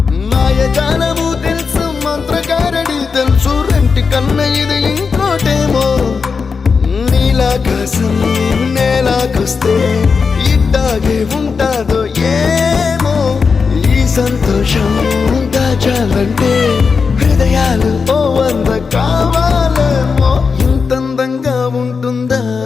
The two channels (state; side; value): quieter; right; 5.2 dB